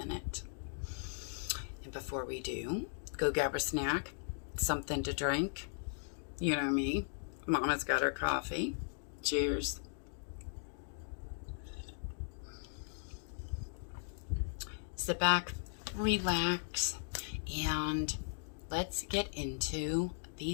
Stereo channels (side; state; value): right; silent; digital silence